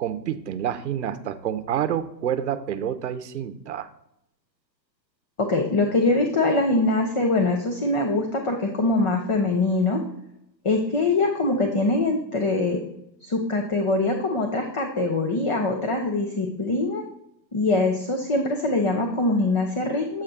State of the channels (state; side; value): late; right; 1.4 ms